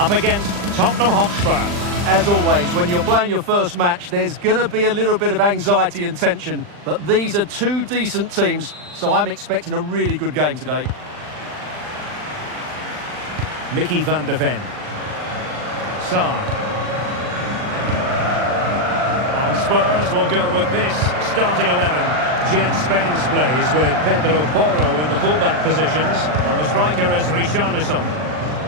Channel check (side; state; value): left; late; 39 ms